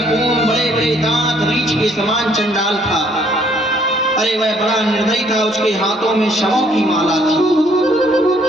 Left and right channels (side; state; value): both; normal; correlation 0.64